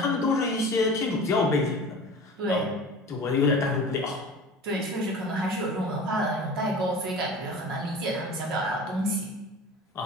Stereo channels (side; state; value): both; normal; correlation 0.38